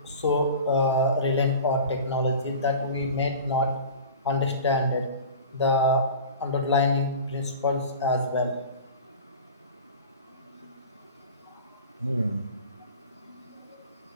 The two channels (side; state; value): both; inverted; correlation -0.37